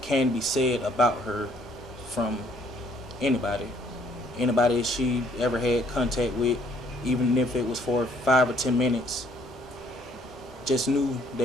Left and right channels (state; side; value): normal; both; correlation 0.64